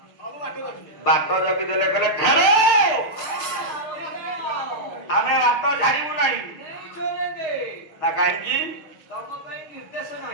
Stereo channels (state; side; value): late; right; 6.6 ms